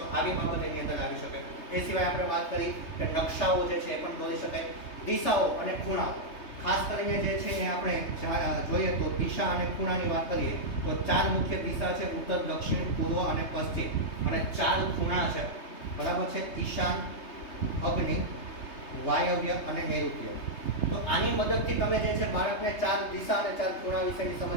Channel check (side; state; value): right; late; 3.2 ms